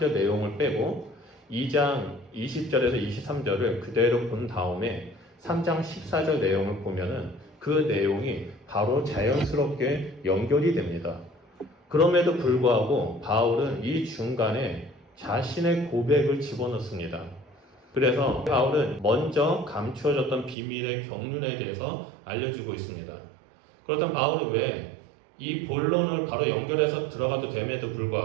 내용을 빼고 2장 20절에서 23절을 그대로 본 다음에 3장 14절 내용을 보면은 그 내용이 바로 자연스럽게 연결이 됩니다. 그럼에도 불구하고 바울은 이 중간에 자신의 고백을 집어넣습니다. 그래서 바울은 먼저 감추어졌던 비밀의 경륜에 대해서 알려주고 있습니다. 그렇다면 바울은 왜 이 본론을 바로 연결해서 들어가도 됨에도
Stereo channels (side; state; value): left; drops out; at 20.6 s